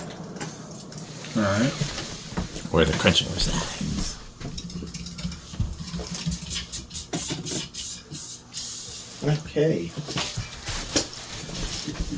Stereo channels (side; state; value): both; identical; correlation 1.00